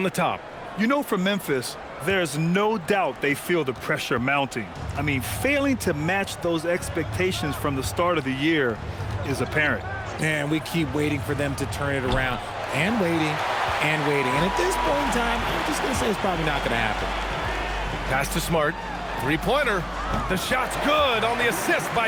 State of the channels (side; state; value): both; identical; correlation 1.00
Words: the top. You know, for Memphis, there's no doubt they feel the pressure mounting. I mean, failing to match those expectations from the start of the year is apparent. And we keep waiting for them to turn it around, and waiting, and waiting. And at this point in time, I'm just going to say it's probably not going to happen. Pass to Smart. 3-pointer. The shot's good on the assist